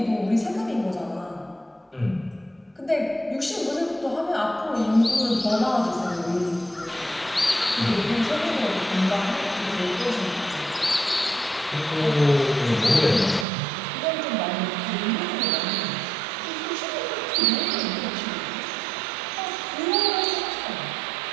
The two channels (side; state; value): left; drops out; at 13.5 s